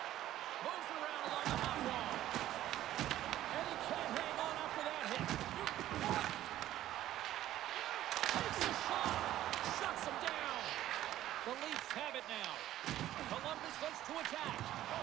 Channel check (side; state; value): left; quieter; 13.4 dB